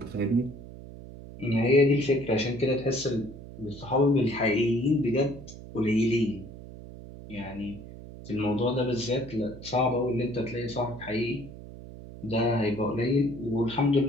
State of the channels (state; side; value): noise; right; hum, 15 dB below the sound